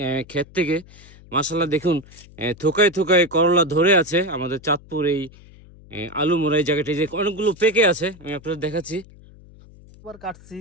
ক্ষেত থেকে। মাশাআল্লাহ দেখুন থোকায় থোকায় করলা ধরে আছে আমাদের চাঁদপুর এই আলুমুরা এই জায়গাটি, যে অনেকগুলো পেকে আছে, আমি আপনাদের দেখাচ্ছি। একবার কাটছি।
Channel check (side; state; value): left; noise; hum, 22 dB below the sound